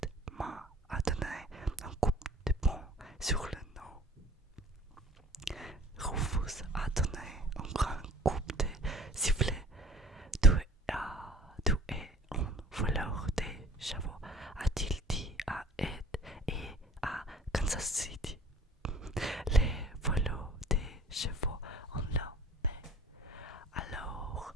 m'a donné un coup de poing sur le nez. Rufus a donné un grand coup de sifflet. Tu es un voleur de chevaux, a-t-il dit à Ed et à Kansas City. Les voleurs de chevaux ont la paix. Alors,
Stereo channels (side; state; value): both; normal; correlation 0.49